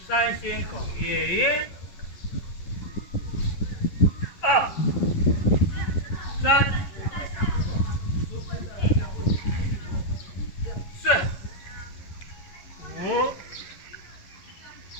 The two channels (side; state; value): right; late; 11 ms